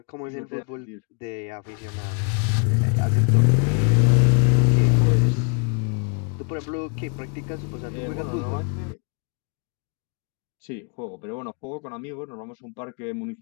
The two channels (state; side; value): quieter; right; 38.5 dB